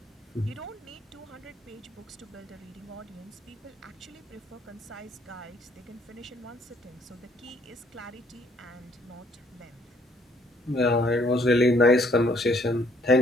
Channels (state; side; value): normal; both; correlation 0.64